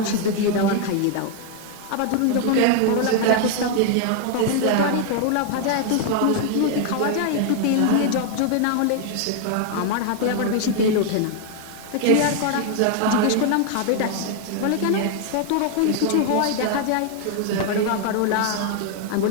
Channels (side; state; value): both; different; correlation 0.00